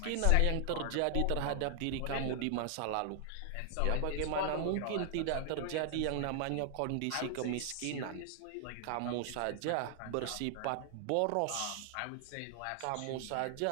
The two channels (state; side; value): different; both; correlation 0.00